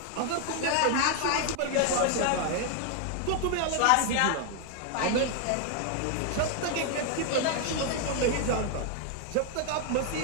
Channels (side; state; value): both; different; correlation 0.00